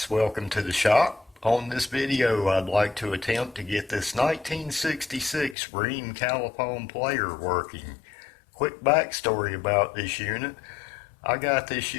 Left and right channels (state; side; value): drops out; right; at 5.6 s